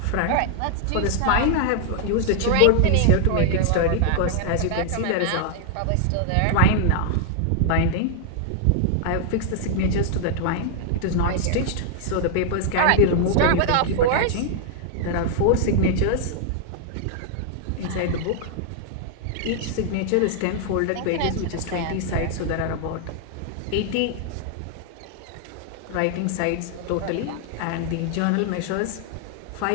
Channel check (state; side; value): different; both; correlation 0.00